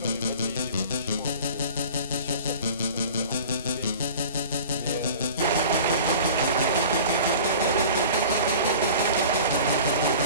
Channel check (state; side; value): inverted; both; correlation -0.42